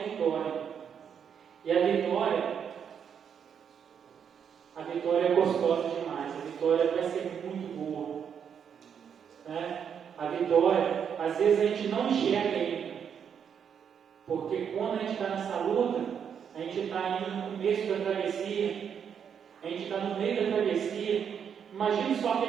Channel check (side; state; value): left; quieter; 7.7 dB